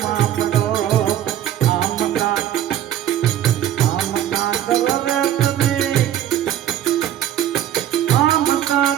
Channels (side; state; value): left; quieter; 11.3 dB